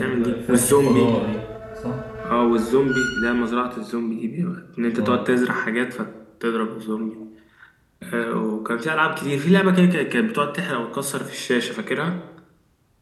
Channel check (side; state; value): both; identical; correlation 1.00